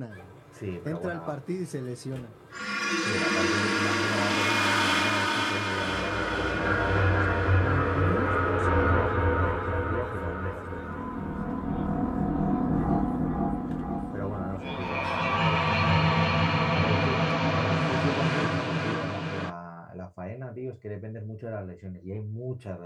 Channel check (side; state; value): both; identical; correlation 1.00